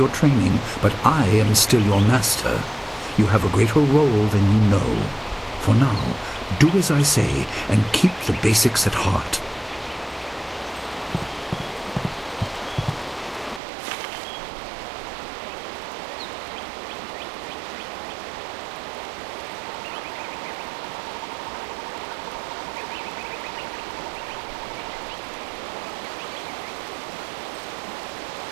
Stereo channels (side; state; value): left; drops out; at 13.6 s